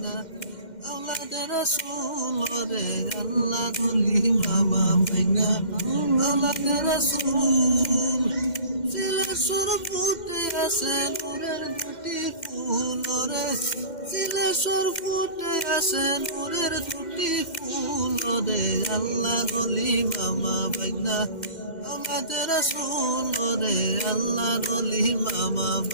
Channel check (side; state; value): right; late; 2.1 ms